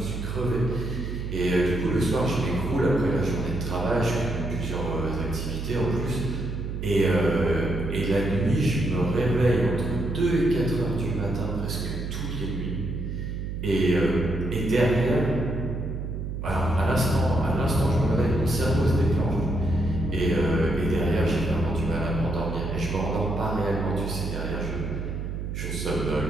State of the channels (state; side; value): noise; right; hum, 5 dB below the sound